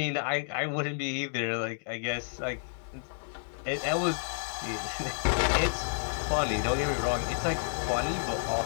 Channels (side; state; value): right; silent; digital silence